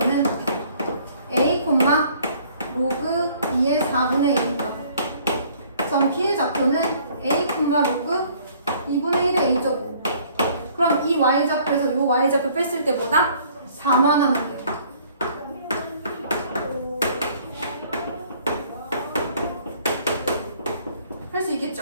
A, 로그 2의 4분의 1이다. 점 B의 좌표는 A, 로그 2분의 1의 A제곱. 그럼 이 Y좌표에서 이 Y좌표 뺐을 때 뭐다? 4만 하면 돼요. 할 수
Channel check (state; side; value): inverted; both; correlation -0.58